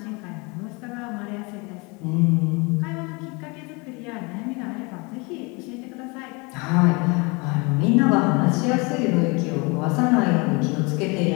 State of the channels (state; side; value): quieter; right; 28.4 dB